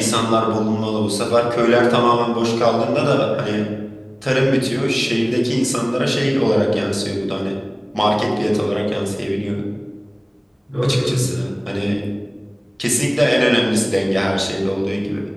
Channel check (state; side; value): identical; both; correlation 1.00